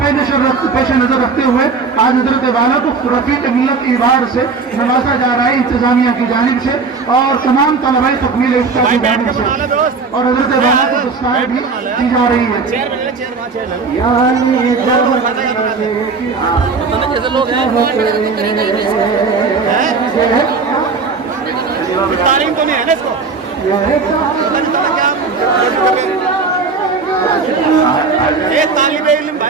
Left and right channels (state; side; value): quieter; left; 4.6 dB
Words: نظر رکھتے ہوئے آج حضرت والا کو رفیق ملت ایوارڈ سے نوازا جا رہا ہے، انتظامیہ کی جانب سے اور تمام طلباء تکمیل افتاء کی جانب سے، اور حضرت والا کو دستار بھی دی جا رہی ہے۔ جیسے لوگ ہیں تعلیم تو نہیں ہے نا اس کو،